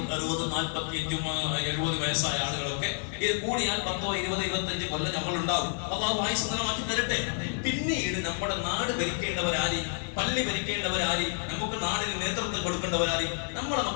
60, 45, 70 വയസ്സായ ആളുകളൊക്കെ ഇത് കൂടിയാൽ 10, 20, 25 കൊല്ലം നമ്മൾ ഉണ്ടാവും. അള്ളാഹു ആയുസ്സ് നിലമാക്കി തരട്ടെ. പിന്നീട് നമ്മുടെ നാട് ഭരിക്കേണ്ടവരാരി, പള്ളി ഭരിക്കേണ്ടവരാരി, നമുക്ക് നാടിന് നേതൃത്വം കൊടുക്കേണ്ടവരാരി നമ്മുടെ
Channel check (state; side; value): silent; right; 58 dB below the other